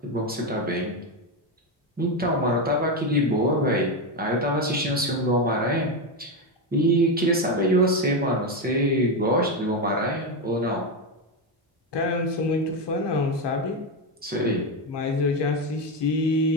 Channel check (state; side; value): normal; both; correlation 0.10